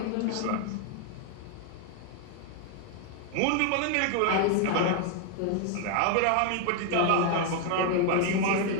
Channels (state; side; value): different; both; correlation 0.00